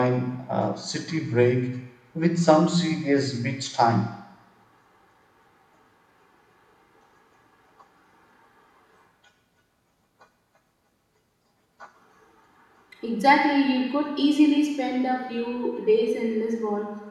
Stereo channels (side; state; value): both; identical; correlation 1.00